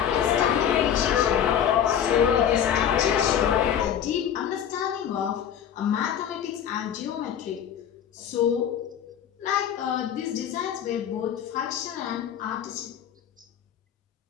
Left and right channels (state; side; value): quieter; right; 9.3 dB